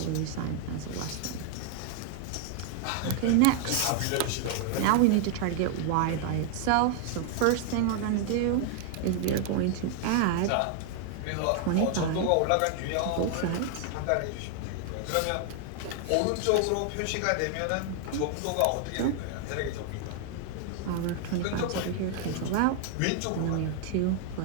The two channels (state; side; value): different; both; correlation 0.00